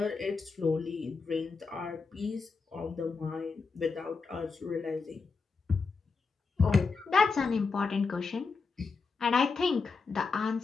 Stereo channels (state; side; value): quieter; right; 4.7 dB